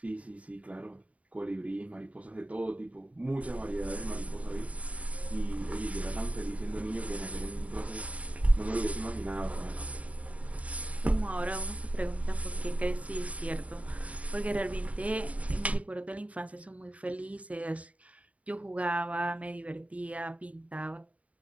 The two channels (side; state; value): left; late; 0.067 ms